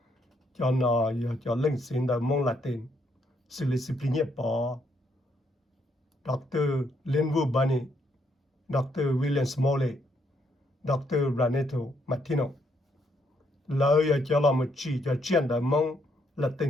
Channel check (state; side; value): normal; both; correlation 0.73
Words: 叫那要叫冷心的梦来等，是了是不也报，Dr. Linwood Bunny，Dr. William Smalley，Dr. Raneto Martino，老要叫他们只叫这样的梦来